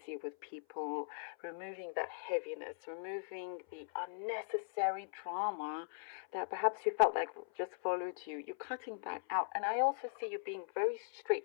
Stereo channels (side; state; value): right; silent; 51 dB below the other